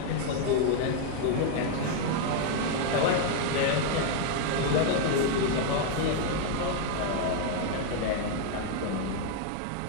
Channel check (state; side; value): different; both; correlation 0.00